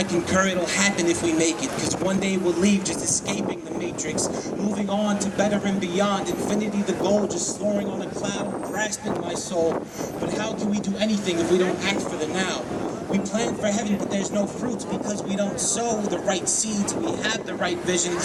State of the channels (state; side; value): identical; both; correlation 1.00